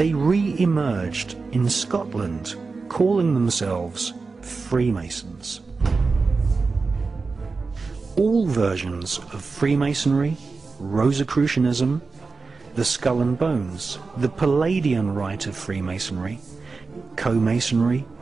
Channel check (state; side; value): quieter; left; 4.3 dB